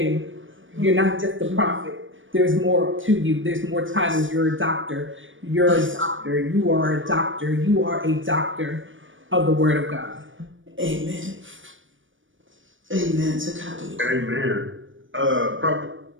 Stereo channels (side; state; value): left; late; 0.57 ms